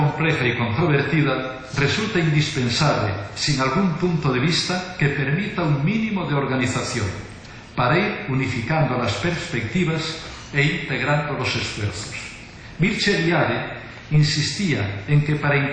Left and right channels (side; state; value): both; identical; correlation 1.00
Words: y controvertida, resulta indispensable, sin algún punto de vista, que permita un mínimo de organización para ir unificando las perspectivas e integrando los esfuerzos. Mircea Eliade insistía en que para